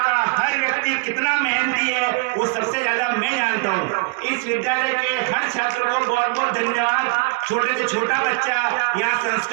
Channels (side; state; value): left; quieter; 29.0 dB